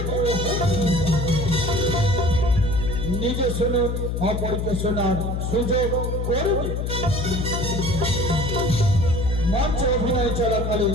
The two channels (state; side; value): noise; left; hum, 1 dB below the sound